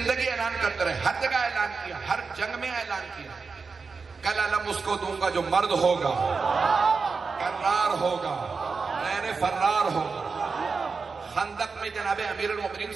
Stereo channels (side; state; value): left; quieter; 4.8 dB